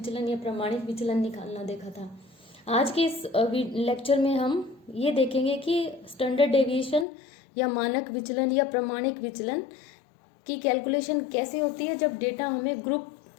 या प्रमाणित विचलन निकालना देखा था। आज के इस लेक्चर में हम ये देखेंगे कि स्टैंडर्ड डेविएशन या मानक विचलन या प्रमाणित विचलन की कैलकुलेशन कैसे होती है जब डेटा हमें ग्रुप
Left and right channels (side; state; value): right; drops out; at 7.1 s